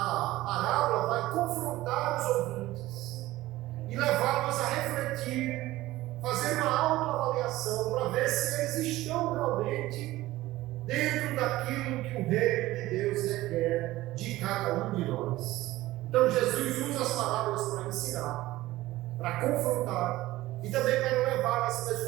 parábola vai confrontar os ouvintes e levá-los a refletir, fazer uma autoavaliação para ver se eles estão realmente dentro daquilo que o reino de Deus requer de cada um de nós. Então Jesus usa as parábolas para ensinar, para confrontar e também para levar as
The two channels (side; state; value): left; quieter; 17.1 dB